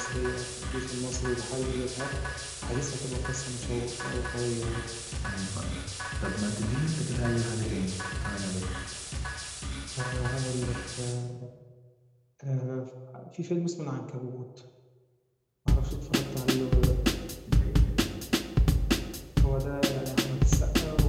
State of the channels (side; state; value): both; identical; correlation 1.00